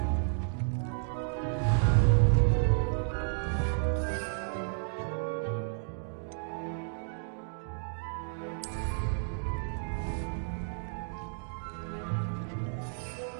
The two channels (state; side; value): silent; left; digital silence